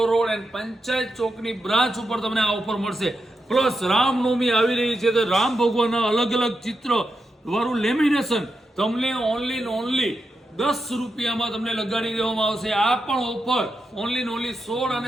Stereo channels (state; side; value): normal; both; correlation 0.87